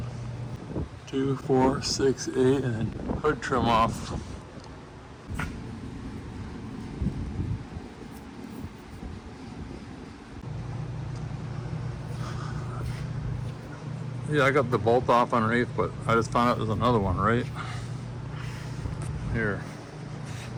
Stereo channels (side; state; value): both; identical; correlation 1.00